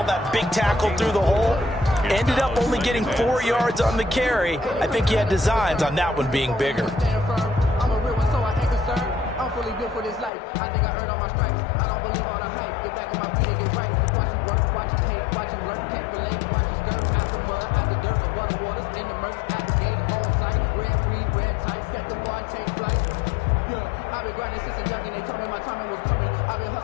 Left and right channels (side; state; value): right; drops out; at 10.3 s